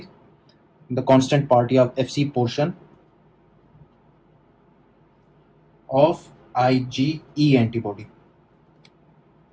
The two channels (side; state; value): both; identical; correlation 1.00